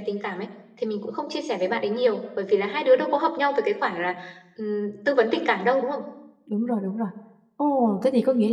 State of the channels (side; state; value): both; identical; correlation 1.00